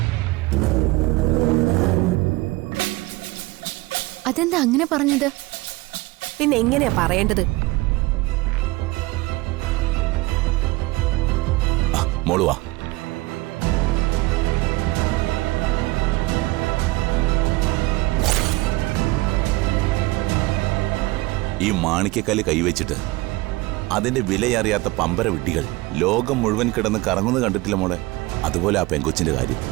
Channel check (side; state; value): left; quieter; 21.4 dB